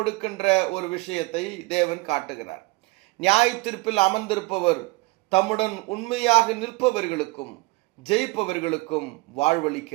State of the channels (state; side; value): quieter; left; 24.3 dB